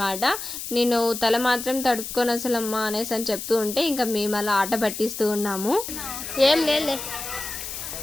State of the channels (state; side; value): noise; left; hiss, 7 dB below the sound